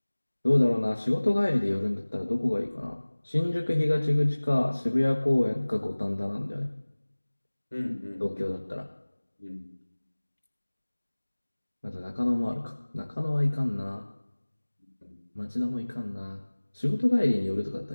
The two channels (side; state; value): both; inverted; correlation -1.00